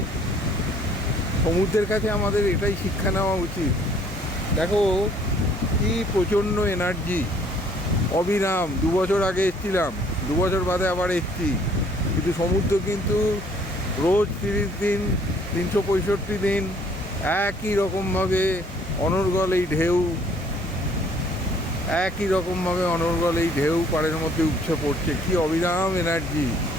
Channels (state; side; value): normal; both; correlation 0.60